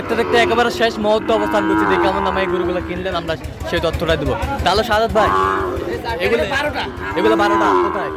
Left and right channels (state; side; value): identical; both; correlation 1.00